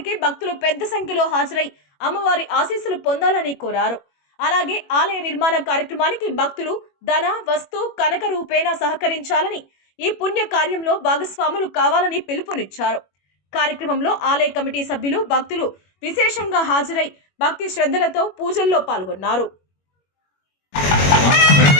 భక్తులు పెద్ద సంఖ్యలో హాజరై అమ్మవారి ఆశీస్సులు పొందాలని కోరారు. అలాగే ఆలయ నిర్మాణ కార్యక్రమానికి భక్తులు ధన, వస్తు, కనక రూపేణ సహకరించాలని, ఈ పుణ్య కార్యంలో భాగస్వాములు కావాలని పిలుపునిచ్చారు. కార్యక్రమంలో ఆలయ కమిటీ సభ్యులు, భక్తులు విశేషంగా హాజరై భక్తి శ్రద్ధలతో పూజల్లో పాల్గొన్నారు.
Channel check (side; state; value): right; late; 21 ms